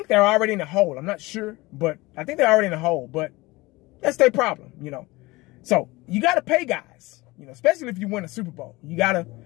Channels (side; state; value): right; quieter; 21.6 dB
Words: they're already in the hole. I'm not sure, but I think they're already in the hole. But that's their problem, you know. So you got to pay guys, you know, especially if you win a Super Bowl. You got to,